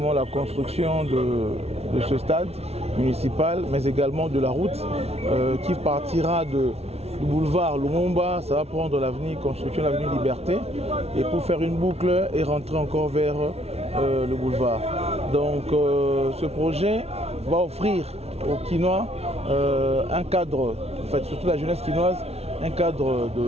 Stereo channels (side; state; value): left; late; 0.30 ms